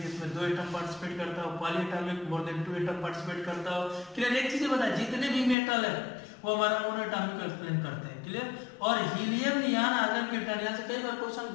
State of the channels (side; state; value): right; drops out; at 5.6 s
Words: जिसमें 2 एटम पार्टिसिपेट करता हो, poly atomic more than 2 atom participate करता हो। क्लियर। एक चीज बताया, जितने भी मेटल है वो हमारा मोनो एटॉमिक को एक्सप्लेन करते हैं। क्लियर। और हीलियम, नियॉन, आर्गन, क्रिप्टॉन, यहाँ से कई बार क्वेश्चन